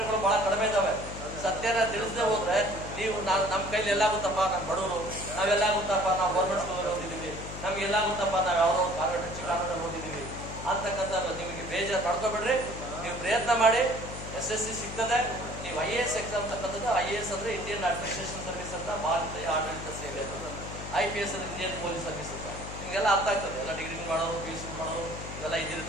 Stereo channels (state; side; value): noise; left; hum, 9 dB below the sound